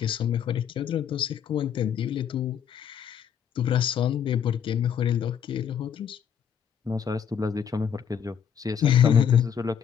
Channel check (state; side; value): quieter; right; 8.2 dB